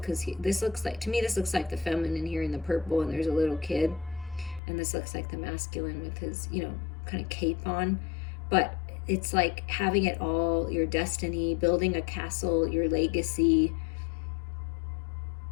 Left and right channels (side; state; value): right; drops out; at 4.6 s